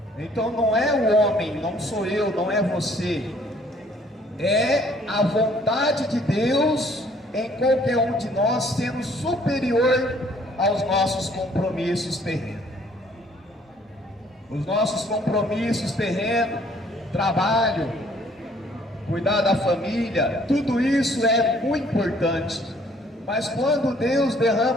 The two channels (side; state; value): both; normal; correlation 0.60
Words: Então não é o homem, não sou eu, não é você, é a vontade de Deus em qualquer um de nós, sendo superior aos nossos compromissos terrenos. Os nossos compromissos terrenos, trabalho, cuidar da família, tudo isso é muito importante, Mas quando Deus